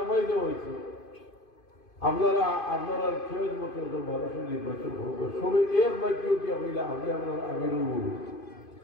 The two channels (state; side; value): late; right; 2.5 ms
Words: দেওয়া হয়েছে, আপনারা খেয়ে মতো মানুষের নির্বাচন করবো, সবাই এক বাক্য কি হইলা আমি আপনার আমিরুল মুমিন